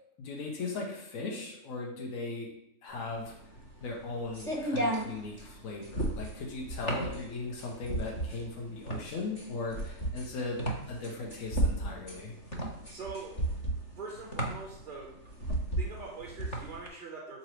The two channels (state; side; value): late; right; 3.4 ms